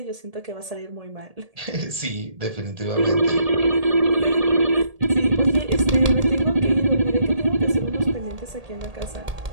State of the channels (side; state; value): left; late; 1.8 ms